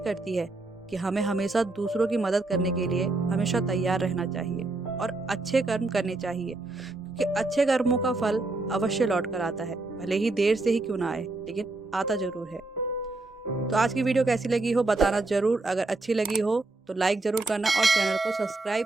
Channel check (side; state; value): left; quieter; 3.1 dB